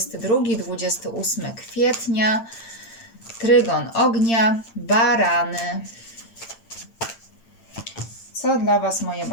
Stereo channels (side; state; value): right; late; 8.8 ms